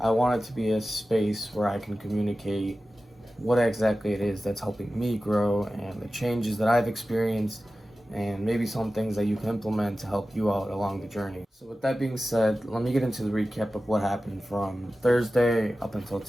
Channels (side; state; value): both; normal; correlation 0.95